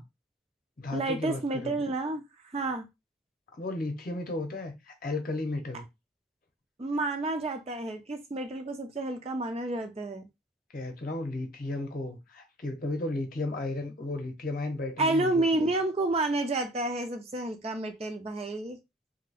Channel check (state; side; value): normal; both; correlation 0.49